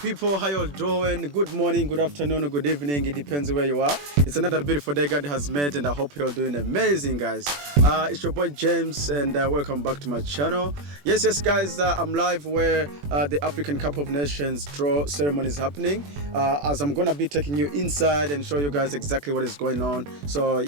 how you all doing? Good morning, good afternoon, or good evening, it depends where you are. It's another beautiful day God has made and I hope you're doing amazing, guys. It's your boy James and welcome back to my channel. Yes guys, I'm live where the African Cup of Nations draw ceremony is happening, as I'm gonna be taking you inside and show you guys exactly what is going on. So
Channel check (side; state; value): left; late; 21 ms